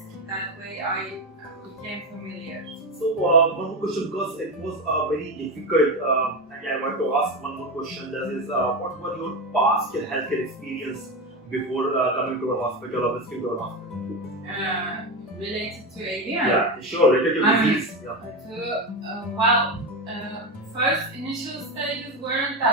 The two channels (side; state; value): both; normal; correlation 0.16